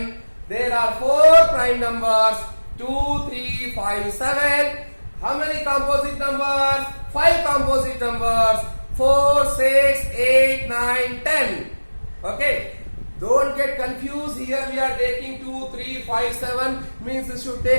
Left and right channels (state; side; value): inverted; both; correlation -1.00